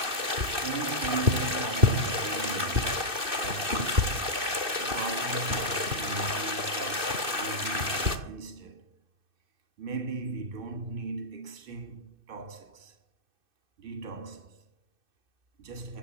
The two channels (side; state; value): left; late; 2.6 ms